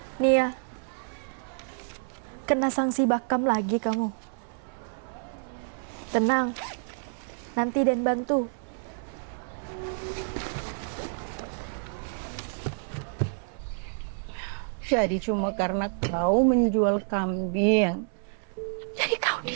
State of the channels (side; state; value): left; silent; 58 dB below the other